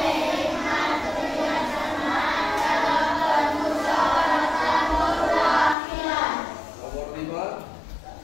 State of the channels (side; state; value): right; drops out; at 5.8 s